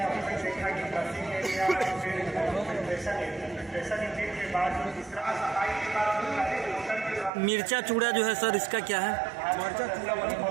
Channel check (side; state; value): left; drops out; at 7.3 s